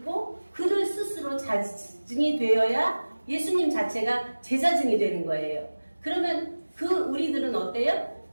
그를 스스로 자증이 되어야 예수님 자체가 제자증이 되는 거예요. 그러면 우리들은 어때요?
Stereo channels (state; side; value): inverted; both; correlation -1.00